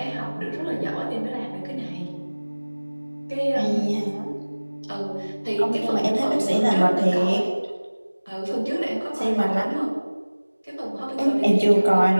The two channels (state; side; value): inverted; both; correlation -1.00